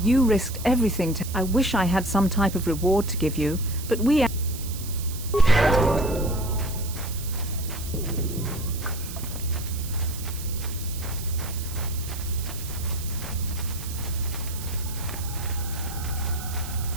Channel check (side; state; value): right; noise; hiss, 12 dB below the sound